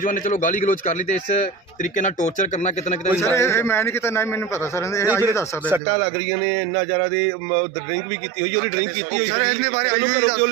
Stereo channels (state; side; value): drops out; left; at 5.8 s